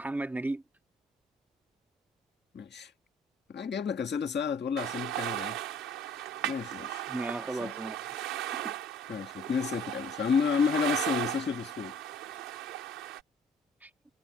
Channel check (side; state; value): both; normal; correlation 0.54